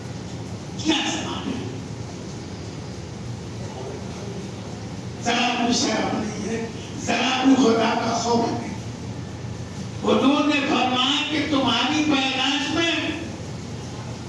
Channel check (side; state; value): both; identical; correlation 1.00